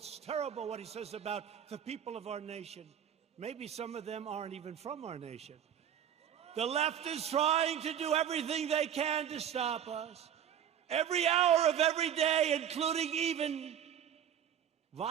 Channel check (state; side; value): quieter; left; 9.4 dB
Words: terrible what he says about the people of our nation. Maybe some of them aren't even from our nation. The left is trying to do everything they can to stop us. Every hour of every day, including even